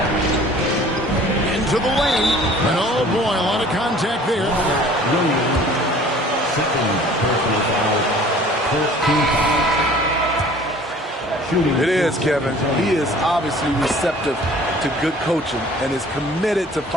Into the lane. And oh boy, a lot of contact there. It is, Kevin. He is obviously receptive to good coaching and is committed to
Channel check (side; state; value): both; normal; correlation 0.50